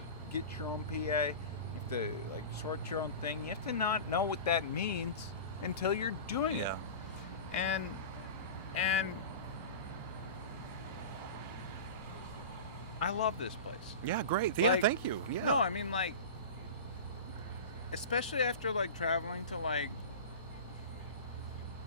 get your own PA. You have to, like, sort your own thing. You have to not know what that means until you're doing it. And I love this place. Yeah, great. Like, yeah, thank you. Yeah. No, I mean, like, especially after, like, traveling to, like,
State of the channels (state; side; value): inverted; both; correlation -0.31